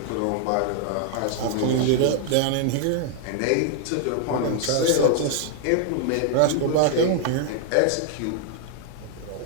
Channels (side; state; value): both; different; correlation 0.00